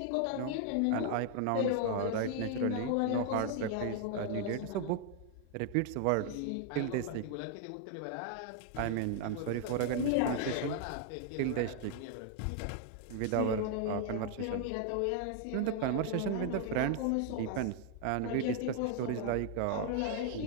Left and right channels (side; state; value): both; different; correlation 0.00